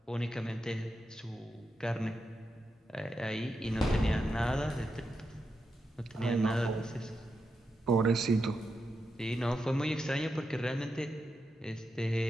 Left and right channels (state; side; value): normal; both; correlation 0.86